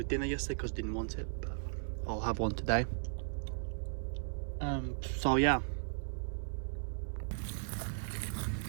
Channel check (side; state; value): left; silent; digital silence